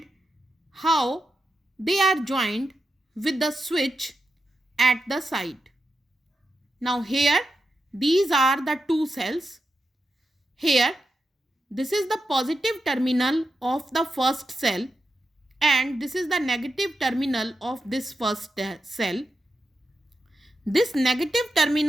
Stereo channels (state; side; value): normal; both; correlation 0.88